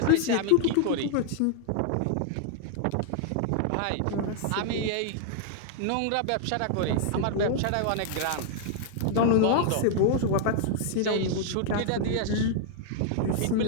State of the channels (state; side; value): different; both; correlation -0.01